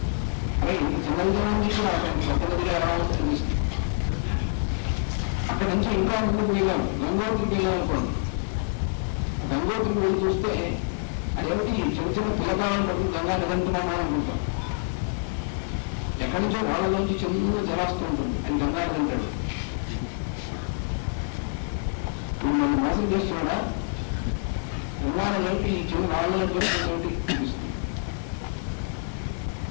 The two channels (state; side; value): silent; right; 60 dB below the other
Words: అరే ఇంత చిన్నదిగా ఉంది కూడా పెద్ద నదిగా ఎలా వస్తుంది. అక్కడ నుంచి ఇంకా ముందుకు వెళ్ళాం, గంగోత్రికి వెళ్ళాం అనుకోండి. గంగోత్రికి వెళ్ళి చూస్తే అదేమిటి చిన్న చిన్న పిల్లకాలను పట్టుకుని గంగా నిరంతరమా అనుకుంటాం. ఎక్కడి నుంచో వాళ్ళలోంచి చిన్న జలాస్తూ ఉంటుంది. ఆయన గంగా నిరంటాడు. ఇప్పుడు మనం మోసం చేస్తున్నాడా? గంగానంటే ఈ చిన్న వాళ్ళని చూస్తుంది.